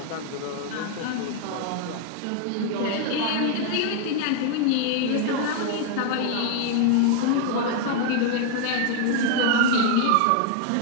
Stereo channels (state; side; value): different; both; correlation 0.00